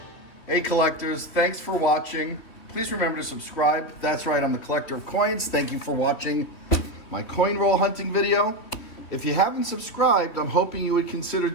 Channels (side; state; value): right; late; 3.4 ms